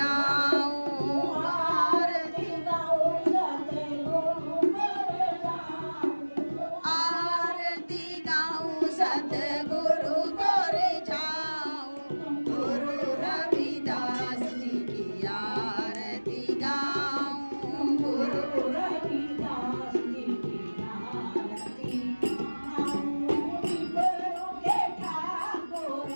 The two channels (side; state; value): both; inverted; correlation -1.00